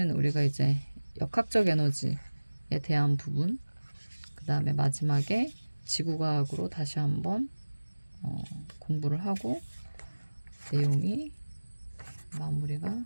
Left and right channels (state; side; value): inverted; both; correlation -1.00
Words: 우리가 이제 역학적 에너지에 대한 부분, 그 다음에 마지막에 지구과학으로 다시 한번 공부를 하고 내용이 마무리가